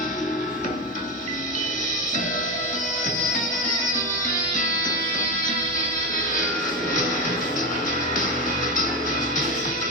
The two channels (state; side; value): normal; both; correlation 0.15